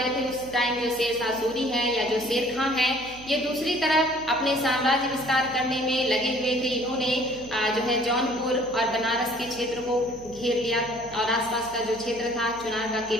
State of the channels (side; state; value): right; noise; hum, 21 dB below the sound